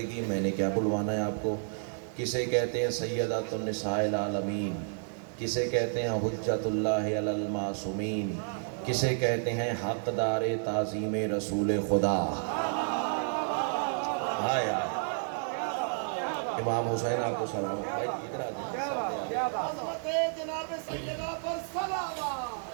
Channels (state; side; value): silent; left; digital silence